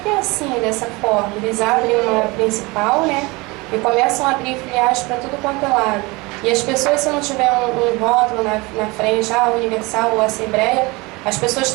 é assim, dessa forma. Eles abrem uma principal, né? E começam a abrir filiais para tudo quanto é lado. E as pessoas, se não tiver um rótulo na frente, Universal ou Assembleia, as pessoas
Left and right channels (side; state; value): left; quieter; 24.4 dB